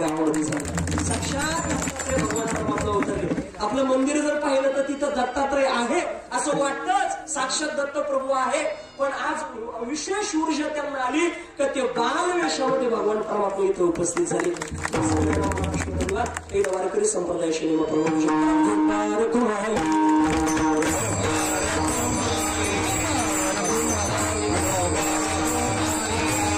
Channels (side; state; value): both; identical; correlation 1.00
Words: झालं. साक्षात दत्तात्रय भगवान परमात्मा उतरले. आपलं मंदिर जर पाहिलं तर तिथं दत्तात्रय आहे असं वाटतंच. साक्षात दत्त प्रभू आहे. पण आज विशेष ऊर्जा त्यांना आली का ते बालवेशामध्ये भगवान परमात्मा इथे उपस्थित झाले. एक वारकरी संप्रदायाशी